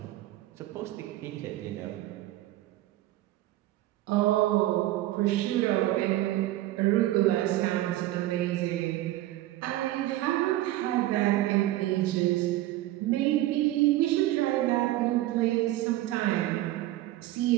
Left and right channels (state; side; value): quieter; left; 15.7 dB